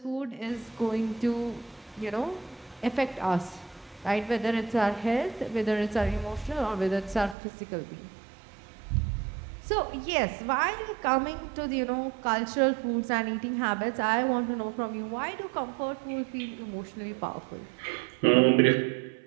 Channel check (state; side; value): drops out; left; at 7.4 s